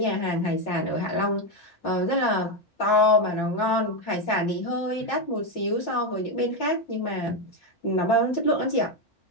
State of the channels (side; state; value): right; late; 5.6 ms